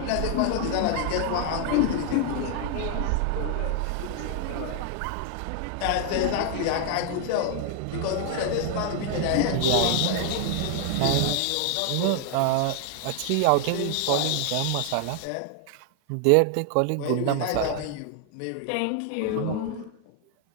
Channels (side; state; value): both; different; correlation 0.00